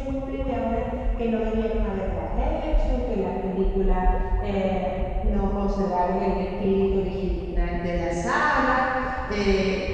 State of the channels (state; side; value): identical; both; correlation 1.00